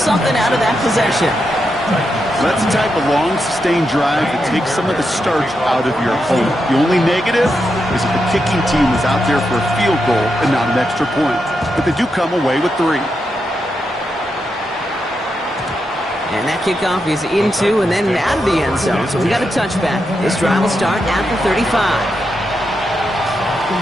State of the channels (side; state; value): both; normal; correlation 0.85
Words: out of that possession. That's the type of long, sustained drive that takes some of the starch out of your opponent. The only negative is if the kicking team is out there for a field goal and not an extra point. But they do come away with 3. And that kickoff is into and then out of the end zone. So we got a touchback. This drive will start at the 35.